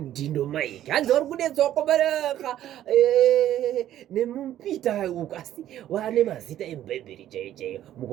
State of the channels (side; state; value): left; quieter; 12.2 dB